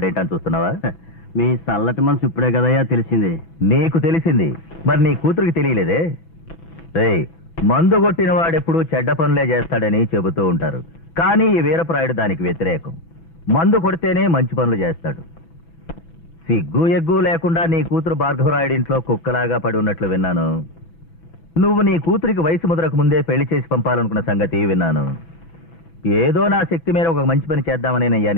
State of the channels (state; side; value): late; right; 6.1 ms